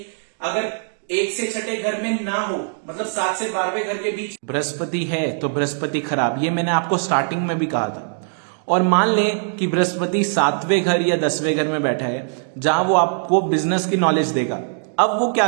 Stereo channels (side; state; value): left; silent; digital silence